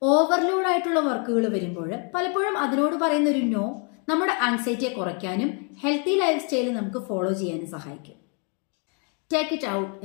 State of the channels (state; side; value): quieter; right; 38.0 dB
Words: ഓവർലോഡ് ആയിട്ടുള്ള വർക്കുകൾ വരുമ്പോൾ പലപ്പോഴും അതിനോട് പറയുന്ന ഒരു നോ നമ്മുടെ ആങ്സൈറ്റിയെ കുറയ്ക്കാനും ഹെൽത്തി ലൈഫ് സ്റ്റൈൽ നമുക്ക് ഫോളോ ചെയ്യാനും സഹായിക്കും. ടേക്ക് ഇറ്റ് ഔട്ട്